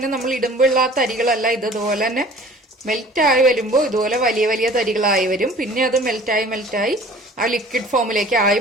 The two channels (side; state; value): both; normal; correlation 0.47